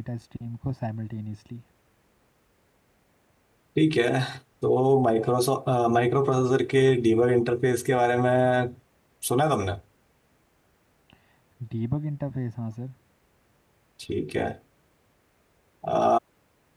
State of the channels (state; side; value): identical; both; correlation 1.00